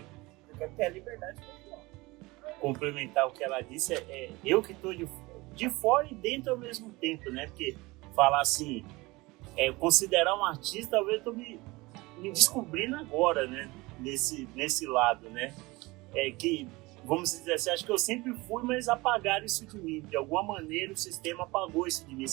Eu quero ter a liberdade de continuar. Complementar o que ela disse, eu que estou de fora e dentro ao mesmo tempo, né? Porque falar assim, considerar um artista, talvez eu estou me descobrindo agora, né? Nesse lado, né? Que, vamos dizer assim, acho que eu sempre fui, mas apagaram isso de mim. De alguma maneira o sistema apagou isso de mim,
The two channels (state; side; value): quieter; left; 22.4 dB